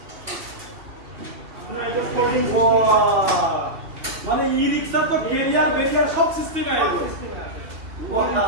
আপনার এটা ফোল্ডিং মানে ই রিক্সা তো বেরিয়ার সব সিস্টেম আছে।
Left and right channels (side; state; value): left; late; 2.7 ms